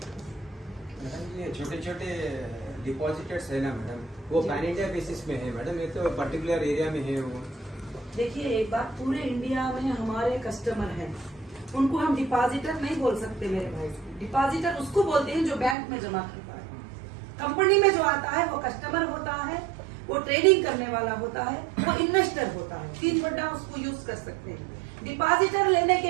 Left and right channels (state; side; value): drops out; left; at 15.8 s